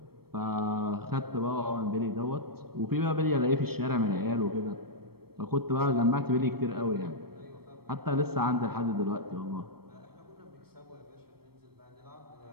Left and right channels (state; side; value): late; left; 0.95 ms